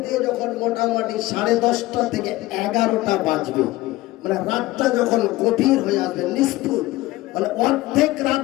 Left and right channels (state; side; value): quieter; right; 18.3 dB